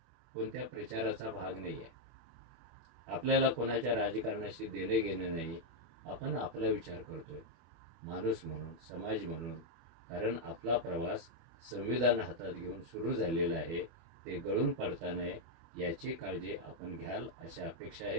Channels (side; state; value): left; late; 24 ms